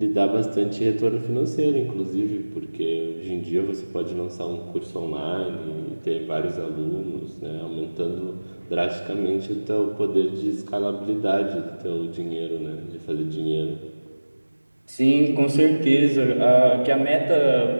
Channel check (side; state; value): both; inverted; correlation -1.00